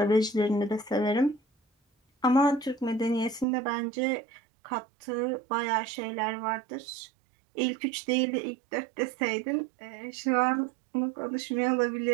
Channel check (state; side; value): drops out; left; at 3.5 s